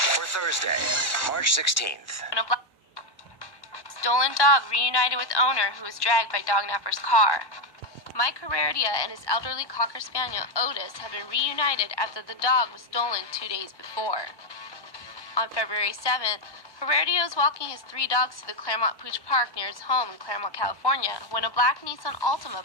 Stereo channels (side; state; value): right; late; 1.1 ms